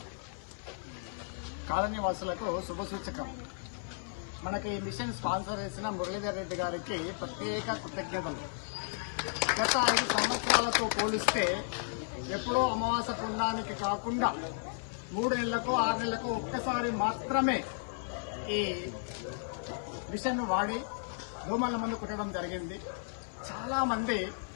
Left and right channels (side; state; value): right; silent; 55 dB below the other